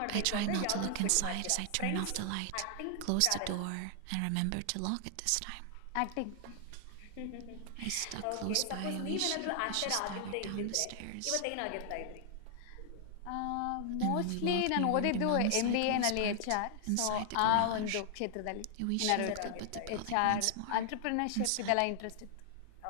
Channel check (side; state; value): both; different; correlation 0.00